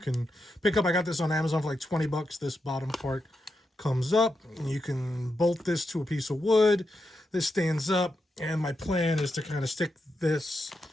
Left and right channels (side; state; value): both; normal; correlation 0.85